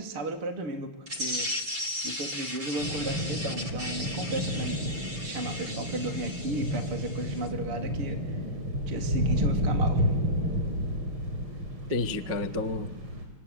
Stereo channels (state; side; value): late; left; 6.1 ms